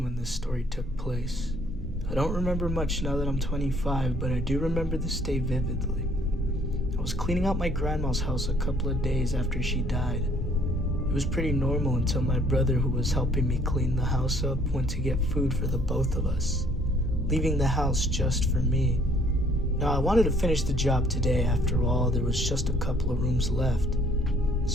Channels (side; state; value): both; normal; correlation 0.61